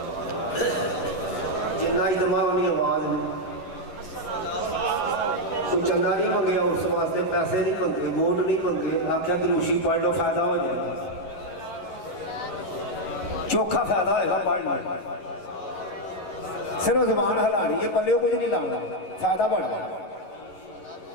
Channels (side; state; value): right; late; 11 ms